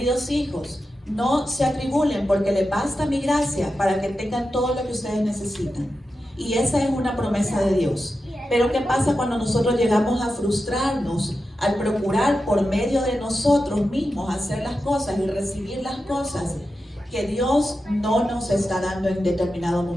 hijos, no se atribulen porque les basta mi gracia para que tengan todo lo que ustedes necesitan. Y esa es una promesa de Dios. Pero ¿qué pasa cuando nosotros llegamos a frustrarnos al procurar por medio de nosotros mismos hacer las cosas y recibir las cosas que Dios no nos está dando en determinado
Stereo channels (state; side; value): normal; both; correlation 0.91